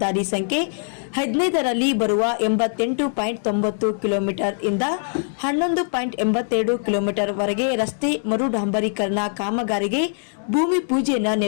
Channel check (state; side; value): silent; right; 64 dB below the other